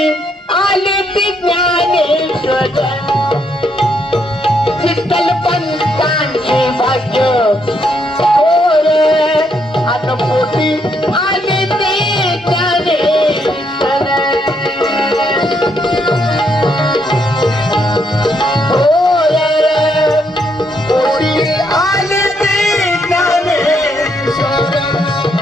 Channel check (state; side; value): normal; both; correlation 0.75